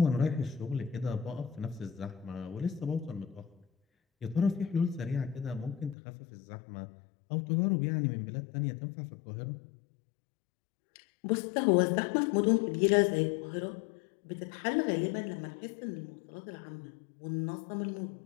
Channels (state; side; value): drops out; right; at 6.0 s